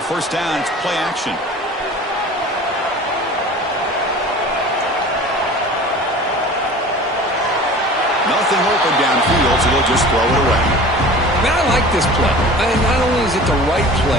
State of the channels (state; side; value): normal; both; correlation 0.41